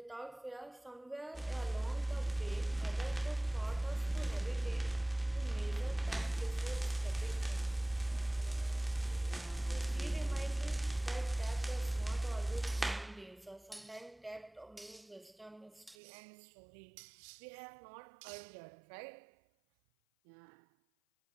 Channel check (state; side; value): drops out; left; at 16.0 s